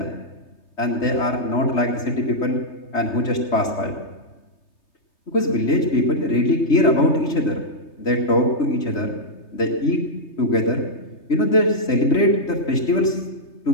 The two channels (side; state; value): right; late; 3.3 ms